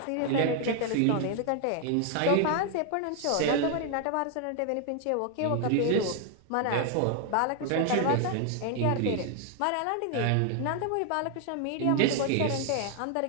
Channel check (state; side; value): different; both; correlation 0.00